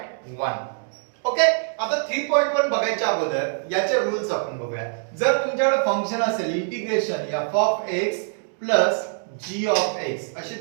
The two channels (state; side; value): silent; left; digital silence